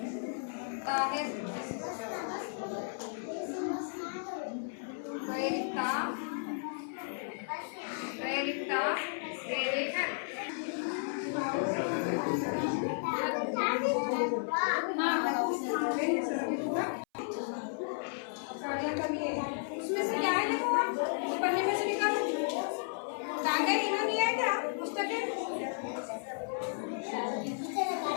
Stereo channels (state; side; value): silent; right; 55 dB below the other